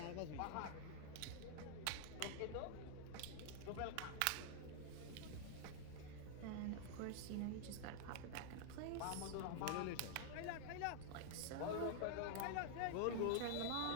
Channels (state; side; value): different; both; correlation 0.00